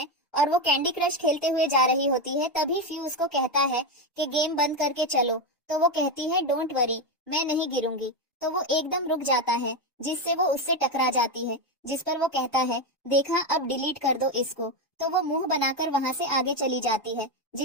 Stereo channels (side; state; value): both; normal; correlation 0.10